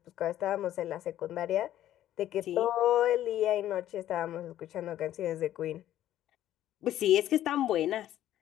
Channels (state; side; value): quieter; right; 12.6 dB